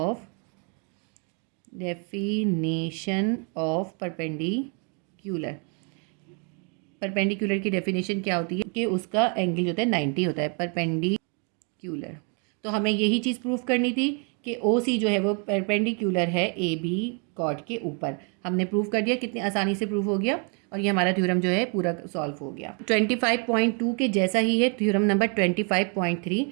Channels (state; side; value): quieter; left; 37.4 dB